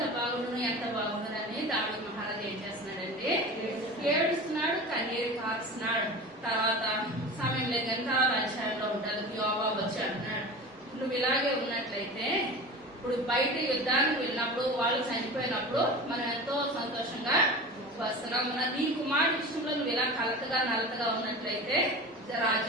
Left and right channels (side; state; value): both; normal; correlation 0.33